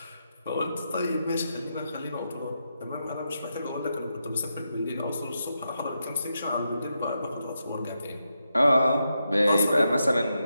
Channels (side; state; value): both; inverted; correlation -0.85